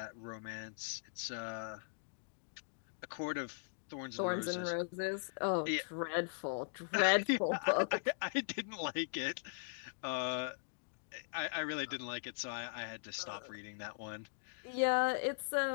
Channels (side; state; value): right; silent; digital silence